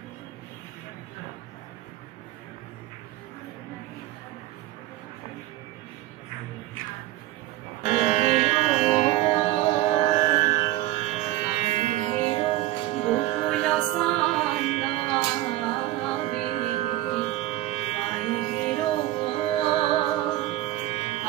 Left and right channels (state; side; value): quieter; left; 15.8 dB